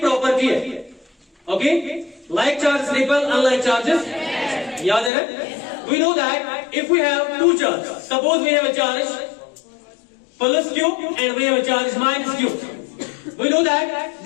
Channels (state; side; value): drops out; right; at 5.1 s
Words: है, okay, like charge repel unlike charges, याद है ना? We know that if we have two charge, suppose we have a charge plus q and we have a charge minus q, we know that